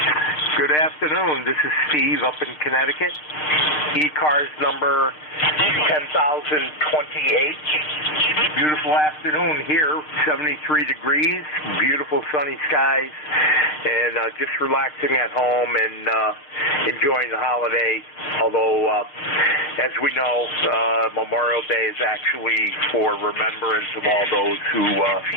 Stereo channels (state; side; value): late; right; 6.6 ms